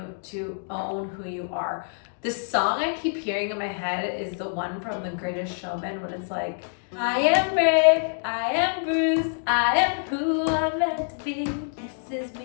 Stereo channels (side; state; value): right; silent; digital silence